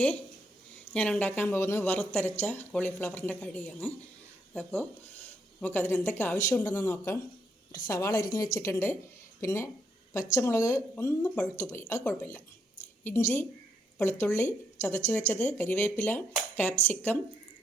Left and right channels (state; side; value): normal; both; correlation 0.76